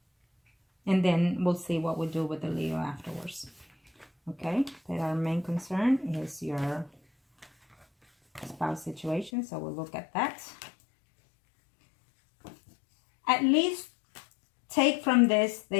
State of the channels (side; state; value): right; drops out; at 9.3 s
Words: And then we'll see what we do with the Leo afterwards. Okay, but our main concern is your spouse situation, so we'll look at that. At least take from this